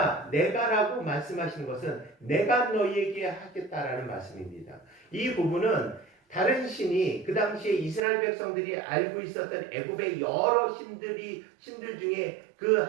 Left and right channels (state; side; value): drops out; left; at 8.0 s